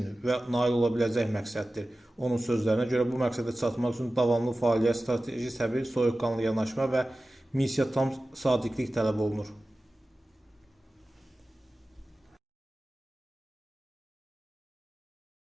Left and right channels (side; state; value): both; normal; correlation 0.96